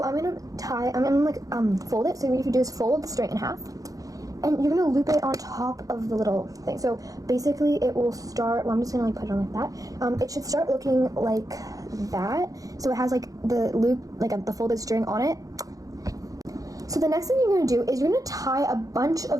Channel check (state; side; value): late; left; 0.17 ms